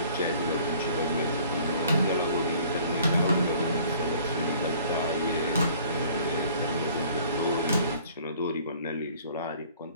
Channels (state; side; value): inverted; both; correlation -0.54